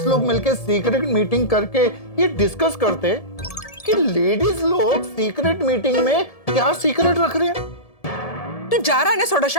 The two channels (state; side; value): late; right; 1.7 ms